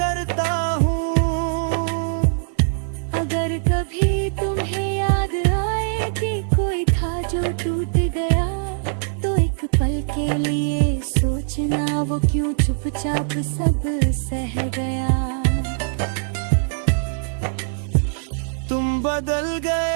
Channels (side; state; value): left; silent; digital silence